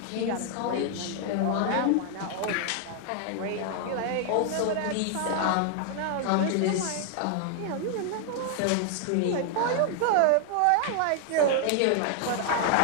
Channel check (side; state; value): both; different; correlation 0.00